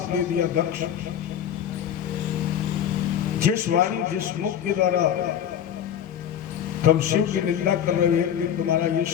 दे दिया, दक्ष जिस वाणी जिस मुख के द्वारा तुम शिव की निंदा कर रहे हैं कि तुम्हारा ये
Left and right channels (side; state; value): right; quieter; 9.6 dB